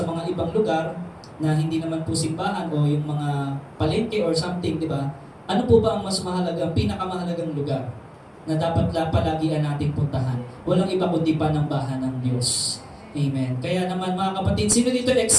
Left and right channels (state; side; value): identical; both; correlation 1.00